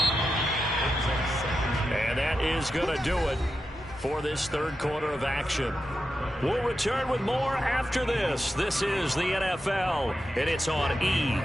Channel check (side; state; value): both; normal; correlation 0.89